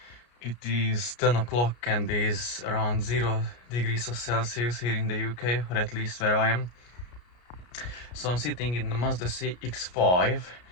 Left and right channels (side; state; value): right; late; 33 ms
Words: It is 10 o'clock and it is around 0 degrees of Celsius here in the UK, or at least where I am. So I'm sitting in the Mazda CX5.